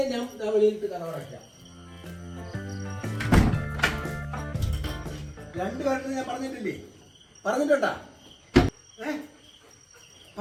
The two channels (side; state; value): both; identical; correlation 1.00